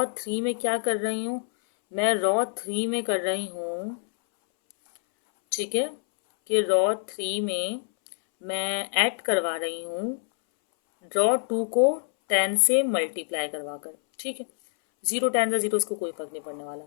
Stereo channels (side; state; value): right; silent; 61 dB below the other